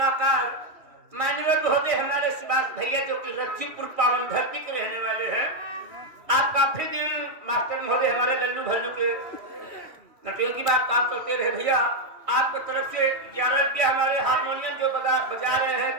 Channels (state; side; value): late; left; 3.1 ms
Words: मान्यवर महोदय हमारे सुभाष भैया जो कि रज्जूपुर पावन धरती के रहने वाले हैं। आप काफी दिन मास्टर महोदय हमारे लल्लू भल्लू के नटियों की बात काम करते रहे भैया। आपकी तरफ से 11 रुपया हमारे हारमोनियम जो बजा रहे हैं